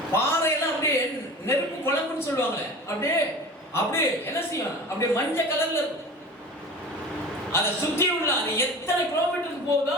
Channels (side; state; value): both; normal; correlation 0.36